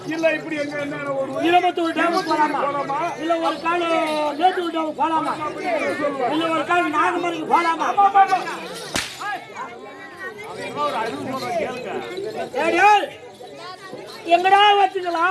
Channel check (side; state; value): both; identical; correlation 1.00